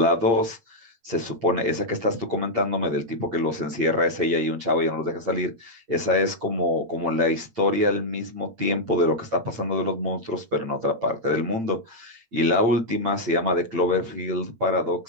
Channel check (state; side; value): late; left; 8.8 ms